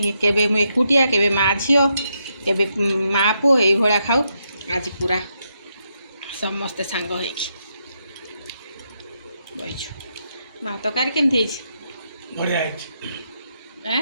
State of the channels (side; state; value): both; inverted; correlation -0.81